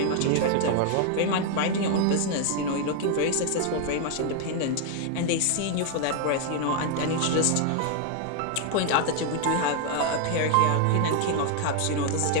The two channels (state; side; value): different; both; correlation 0.00